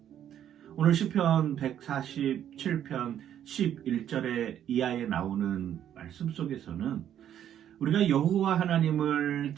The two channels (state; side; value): quieter; left; 10.3 dB